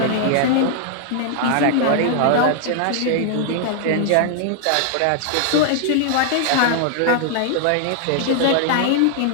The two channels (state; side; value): different; both; correlation 0.00